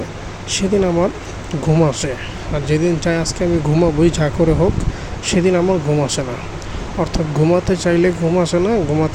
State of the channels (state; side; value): identical; both; correlation 1.00